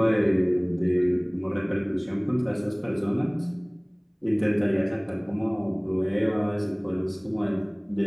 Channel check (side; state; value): both; identical; correlation 1.00